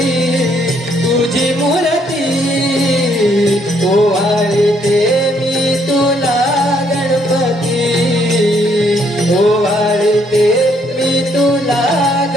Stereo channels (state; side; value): normal; both; correlation 0.69